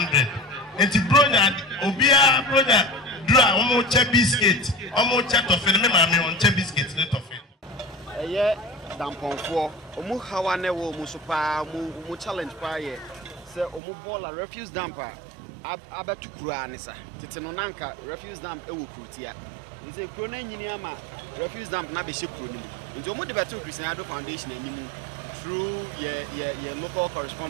And the brother, Obia brother, draw almost a biscuit, almost a toffee, and mammy on a biscuit, let of it. Yeah, dampon for Omu Hawane wo Musupa, Mu challenge paye. Say Omu Bola refuse damper. Abetu Kuranisa. Titanonanka refuse damp ewu Krutia. Is a crone Yiniama refuse damp Nabishi Kruni. Into Omu Debetu Christian Foundation and through your local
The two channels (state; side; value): drops out; left; at 13.8 s